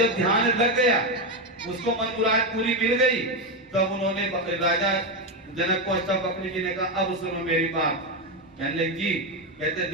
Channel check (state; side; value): normal; both; correlation 0.09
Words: ध्यान लग गया, उसको मन मुराद पूरी मिल गई, तब उन्होंने राजा जनक को अष्टा बकरी जी ने कहा अब सुनो मेरी बात। कहने लगे जी, कहते